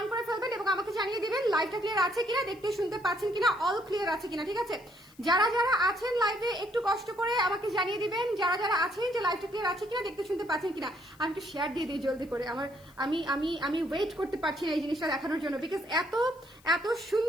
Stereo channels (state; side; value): noise; left; hiss, 28 dB below the sound